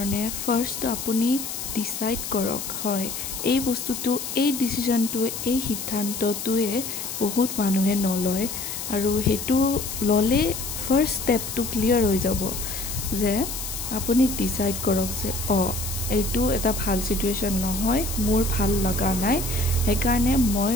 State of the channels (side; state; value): left; noise; hiss, 6 dB below the sound